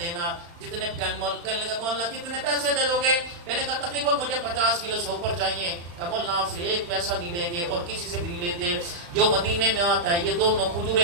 دینا، جتنے مولانا کتنے پیسے دے دو گے؟ میں نے کہا تقریباً مجھے 50 کلو سے اوپر چاہیے۔ کہ مولانا آپ سے 1 پیسہ نہیں لیں گے اور کسی سے بھی لیتے، جو مدینے میں آتا ہے یہ دونوں کھجوریں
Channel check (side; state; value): left; late; 35 ms